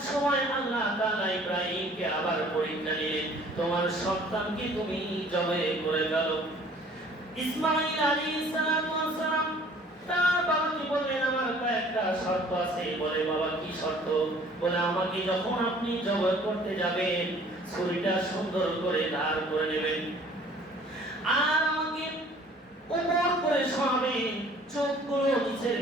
সময় আল্লাহ তাআলা ইব্রাহিমকে আবার পরীক্ষা নিলেন, তোমার সন্তানকে তুমি জবাই করে গেল। ইসমাঈল আলাইহিস সালাতু ওয়াস সালাম তার বাবাকে বললেন, আমার একটা শর্ত আছে। বলে, বাবা কি শর্ত? বলে, আমাকে যখন আপনি জবাই করতে যাবেন, ছুরিটা সুন্দর করে ধার করে নেবেন, আর আমাকে উপর করে শোয়াবেন, চোখগুলো নিচের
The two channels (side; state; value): both; normal; correlation 0.53